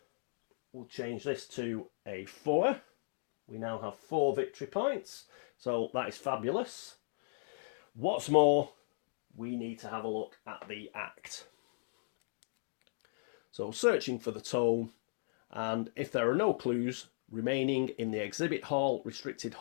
we'll change this to a 4. We now have 4 victory points. So that is fabulous. What's more, we need to have a look at the act. So searching for the tome, and if there are no clues remaining in the exhibit hall, restricted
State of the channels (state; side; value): silent; right; digital silence